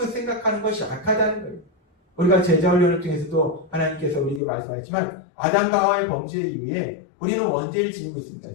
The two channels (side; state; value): right; drops out; at 4.4 s